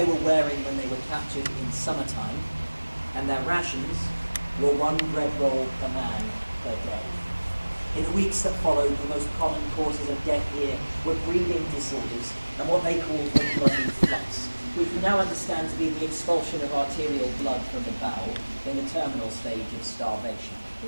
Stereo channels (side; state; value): both; inverted; correlation -1.00